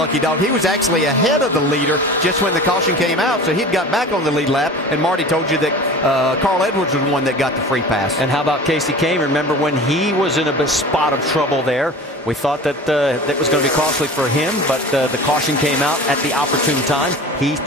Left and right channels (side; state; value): both; normal; correlation 0.38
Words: dog. He was actually ahead of the leader just when the caution came out, so he'd got back on the lead lap, and Marty told you that Carl Edwards was the one that got the free pass. And how about Casey Kane? Remember when he was in a spot of trouble there? We thought that that was going to be costly for him, but the caution came out at the opportune time. He,